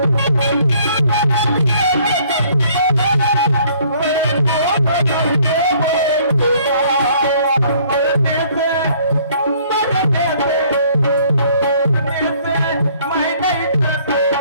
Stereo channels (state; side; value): inverted; both; correlation -0.60